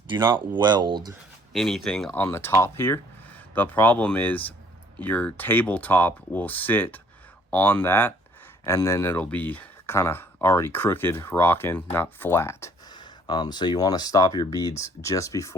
do not weld anything on the top here. The problem is your tabletop will sit on that, and then it'll be kind of already crooked, rocking, not flat. So you want to stop your beads just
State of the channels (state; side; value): normal; both; correlation 0.60